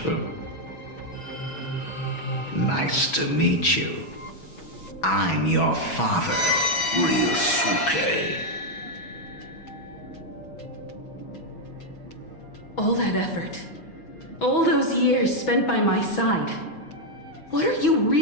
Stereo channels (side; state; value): right; late; 6.2 ms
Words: Nice to meet you. I'm your father, Ryusuke. All that effort, all those years spent by my side. What are you